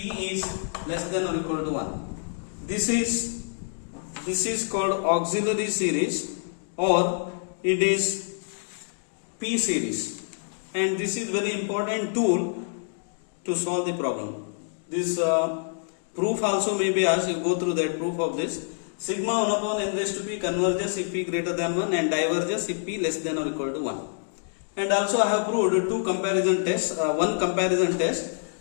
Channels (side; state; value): right; silent; digital silence